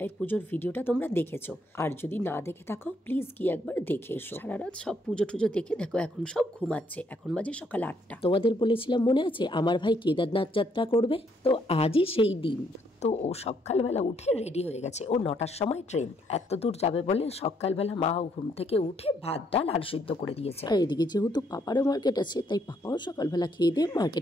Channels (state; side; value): normal; both; correlation 0.71